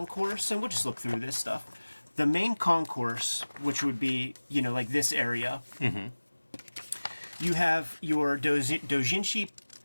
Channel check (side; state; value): both; inverted; correlation -1.00